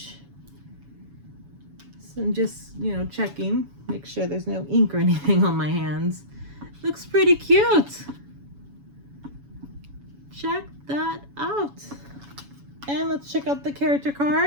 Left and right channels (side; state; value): left; late; 7.1 ms